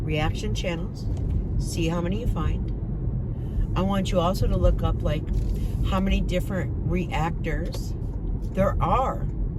channels, see how many you find. I want you also to look up, like, how many different reactors there are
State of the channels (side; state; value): both; identical; correlation 1.00